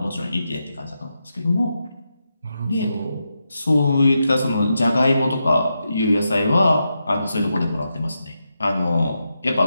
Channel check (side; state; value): both; inverted; correlation -0.86